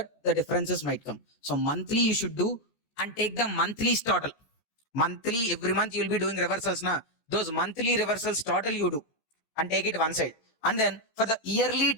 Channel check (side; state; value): right; late; 13 ms